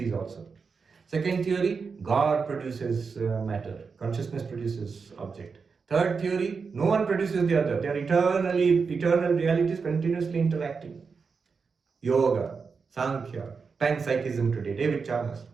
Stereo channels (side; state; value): left; quieter; 5.2 dB